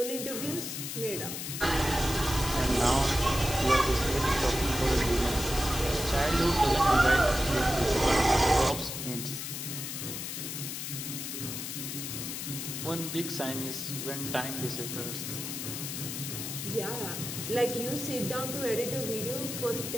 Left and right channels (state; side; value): noise; left; hiss, 5 dB below the sound